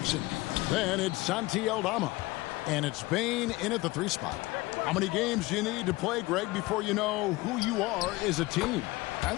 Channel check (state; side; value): quieter; right; 20.9 dB